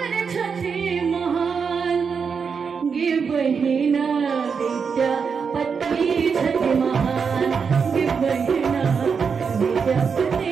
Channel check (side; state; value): left; quieter; 5.9 dB